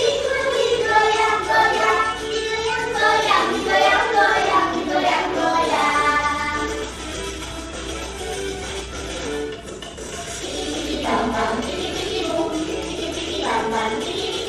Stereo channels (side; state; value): both; identical; correlation 1.00